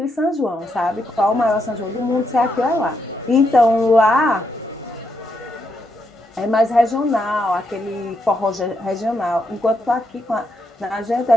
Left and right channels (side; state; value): both; normal; correlation 0.79